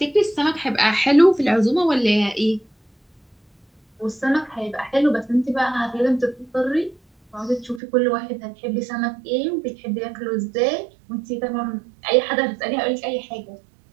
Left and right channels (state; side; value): drops out; left; at 7.8 s